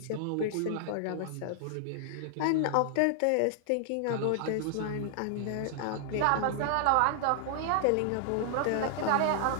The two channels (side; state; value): both; different; correlation -0.01